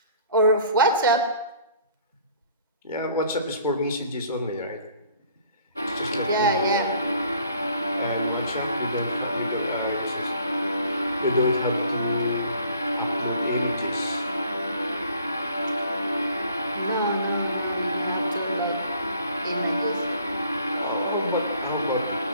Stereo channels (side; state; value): both; inverted; correlation -0.56